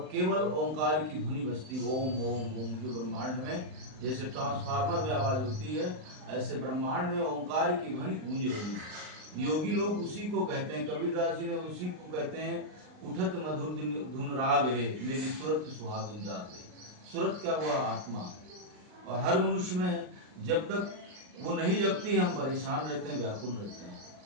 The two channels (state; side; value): late; left; 39 ms